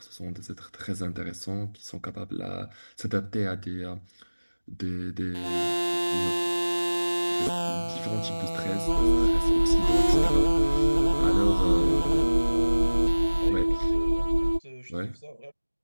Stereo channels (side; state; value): both; inverted; correlation -1.00